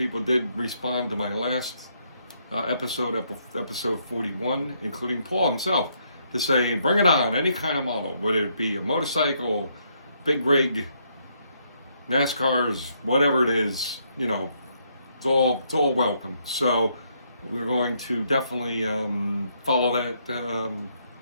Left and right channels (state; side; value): inverted; both; correlation -0.73